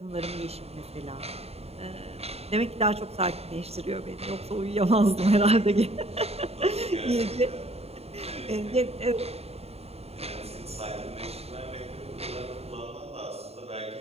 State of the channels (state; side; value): late; left; 0.30 ms